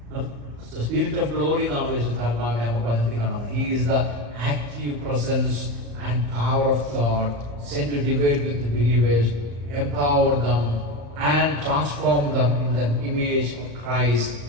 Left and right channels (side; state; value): left; late; 35 ms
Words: സ്പിരിറ്റ് ഓഫ് ഗ്ലോറി എന്നാണ് പരിശുദ്ധാത്മാവിനെ നമുക്ക് വചനത്തിൽ കാണുന്നത്. He is the active presence and power of God sent to divide with believers, empower them and transform them in the image of Christ